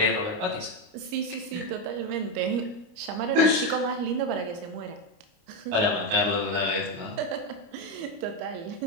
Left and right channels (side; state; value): left; late; 29 ms